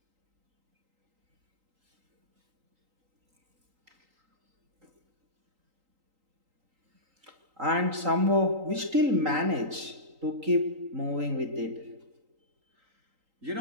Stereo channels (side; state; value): left; late; 3.8 ms